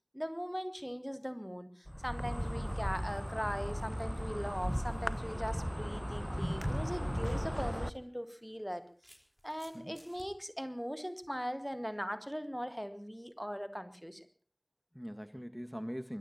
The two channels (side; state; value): both; identical; correlation 1.00